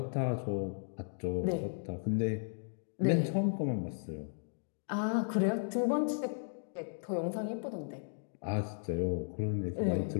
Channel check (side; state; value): right; silent; digital silence